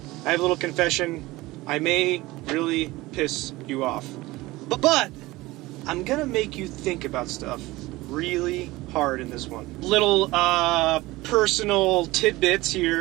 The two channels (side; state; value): left; quieter; 19.8 dB